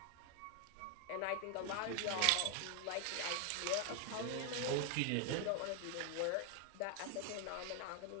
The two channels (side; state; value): both; different; correlation 0.00